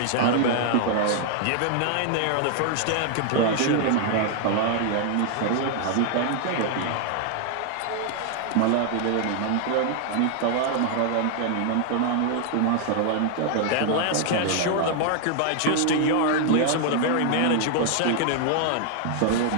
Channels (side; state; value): both; different; correlation 0.00